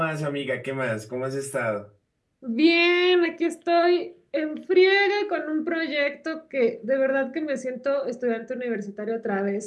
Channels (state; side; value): identical; both; correlation 1.00